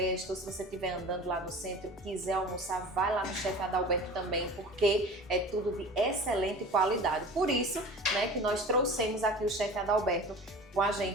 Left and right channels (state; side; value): normal; both; correlation 0.38